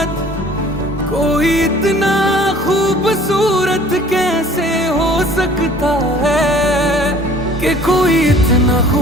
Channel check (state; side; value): normal; both; correlation 0.51